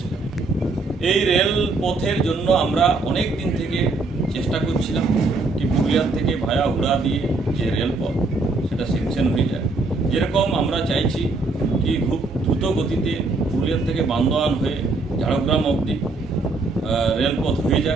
জানাই। এই রেল পথের জন্য আমরা অনেক দিন থেকে চেষ্টা করছিলাম কি পুরুলিয়ার থেকে ভায়া হুড়া দিয়ে যে রেলপথ সেটা সেকশন হয়ে যায়। যেরকম আমরা চাইছি কি খুব দ্রুত গতিতে পুরুলিয়ার থেকে বান্দোয়ান হয়ে ঝাড়গ্রাম অবধি রেলপথ হয়ে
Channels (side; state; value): left; quieter; 3.5 dB